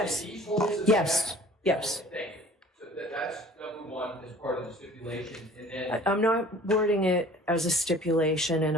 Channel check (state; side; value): normal; both; correlation 0.48